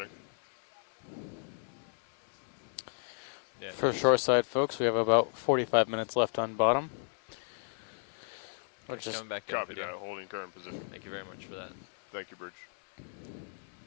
Yeah, it For does. shoreside folks, we have about 45 minutes left on bottom. Okay, Which is coming back in Copy video. that. Holding current position. Thank you very much for that. Thank you, Bridge.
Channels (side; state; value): right; silent; 55 dB below the other